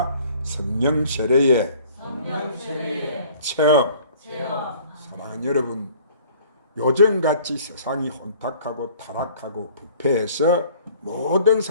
성령 세례의 체험. 사랑하는 여러분, 요즘같이 세상이 혼탁하고 타락하고 부패해서 모든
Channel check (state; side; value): inverted; both; correlation -0.52